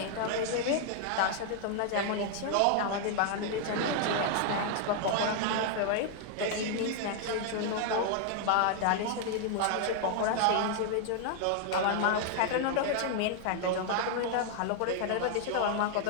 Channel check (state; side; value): different; both; correlation 0.00